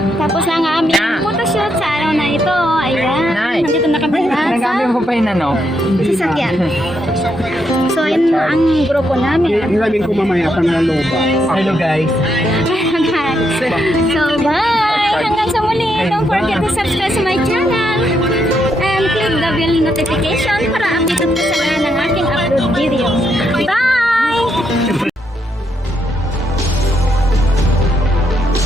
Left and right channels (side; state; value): both; normal; correlation 0.79